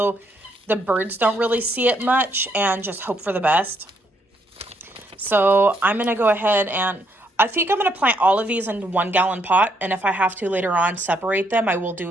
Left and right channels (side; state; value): both; normal; correlation 0.73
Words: the birds don't really see it much, and just hope for the best. So I'm going to go ahead and I think I'm going to plant all of these in 1 gallon pot. And if I have to later on separate them, I will